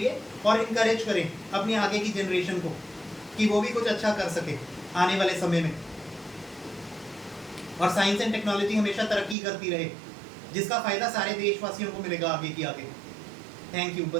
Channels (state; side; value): drops out; left; at 9.3 s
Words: और इनकरेज करें अपनी आगे की जनरेशन को कि वो भी कुछ अच्छा कर सके आने वाले समय में। और साइंस एंड टेक्नोलॉजी हमेशा तरक्की करती रहे, जिसका फ़ायदा सारे देशवासियों को मिलेगा आगे की आगे। थैंक यू,